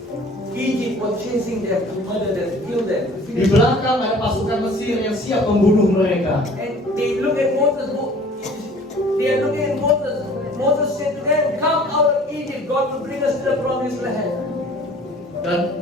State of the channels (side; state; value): both; normal; correlation 0.49